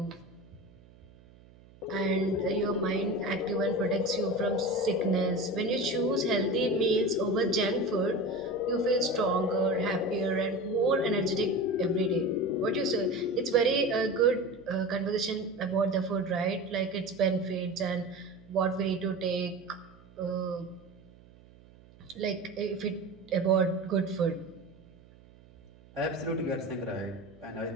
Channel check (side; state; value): right; noise; hum, 24 dB below the sound